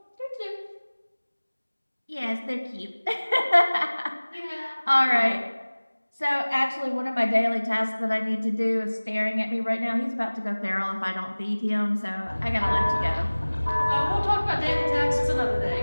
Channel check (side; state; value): both; inverted; correlation -1.00